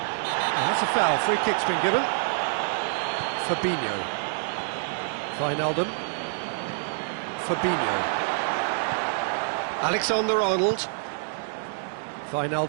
Oh, that's a foul. Free kick's been given. Fabinho. Wijnaldum. Fabinho. Alexander-Arnold.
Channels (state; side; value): silent; left; digital silence